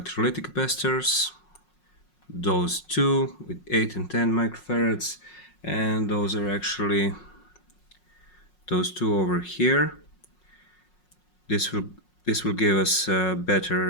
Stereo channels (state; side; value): late; right; 5.5 ms